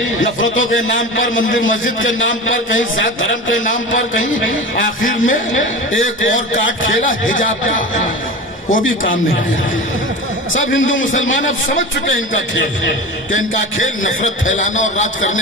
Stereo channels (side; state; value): both; normal; correlation 0.31